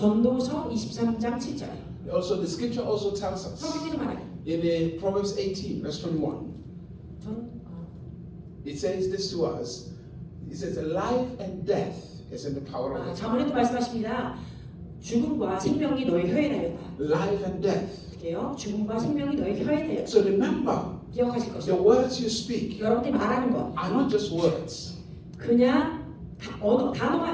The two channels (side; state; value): both; identical; correlation 1.00